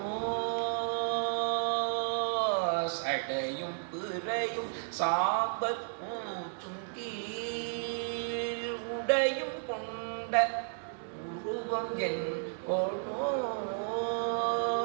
சடையும் பிறையும் சாம்பல் பூச்சும் கீழ் உடையும் கொண்ட உருவம் என் கொளோ.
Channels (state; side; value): silent; left; digital silence